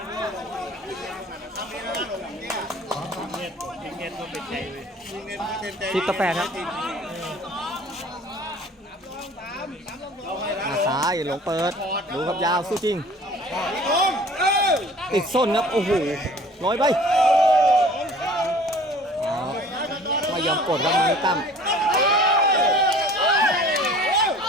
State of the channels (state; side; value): normal; both; correlation 0.48